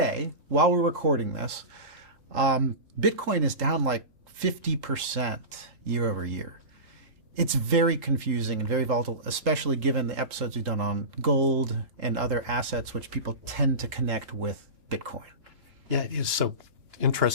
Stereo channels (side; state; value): left; late; 3.8 ms